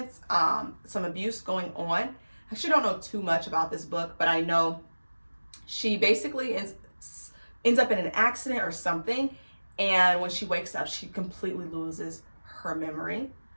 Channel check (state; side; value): inverted; both; correlation -1.00